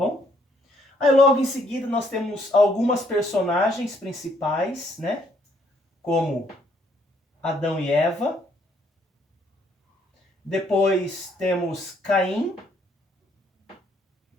Aí, logo em seguida, nós temos algumas personagens principais, né? Como Adão e Eva. Depois temos Caim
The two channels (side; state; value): both; normal; correlation 0.68